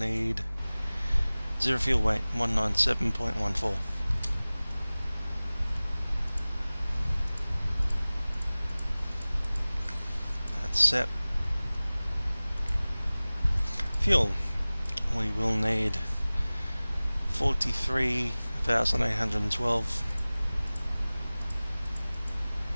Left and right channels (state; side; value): inverted; both; correlation -0.99